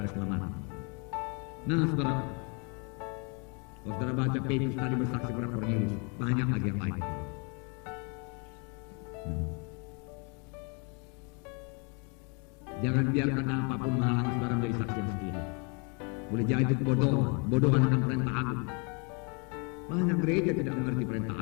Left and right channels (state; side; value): quieter; right; 34.4 dB